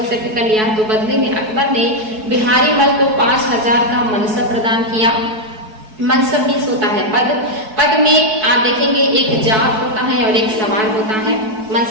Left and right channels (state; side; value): late; left; 4.7 ms